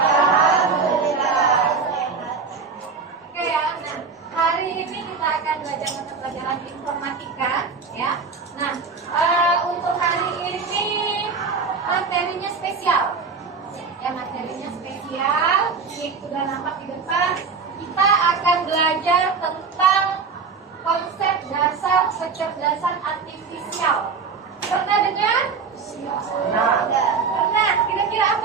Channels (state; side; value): quieter; left; 5.0 dB